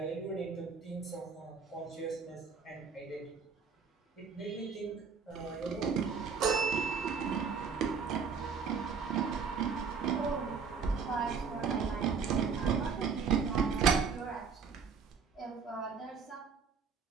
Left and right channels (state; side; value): quieter; left; 5.7 dB